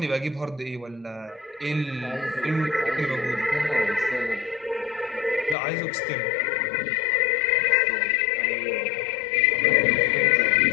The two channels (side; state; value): right; drops out; at 5.6 s